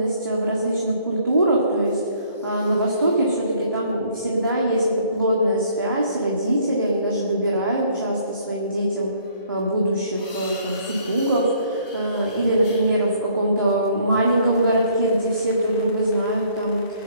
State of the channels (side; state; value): both; inverted; correlation -0.62